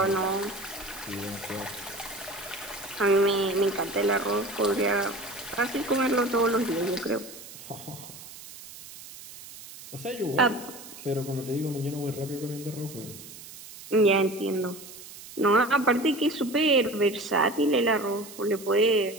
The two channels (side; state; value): right; noise; hiss, 16 dB below the sound